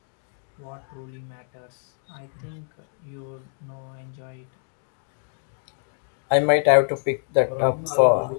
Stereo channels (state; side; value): silent; right; digital silence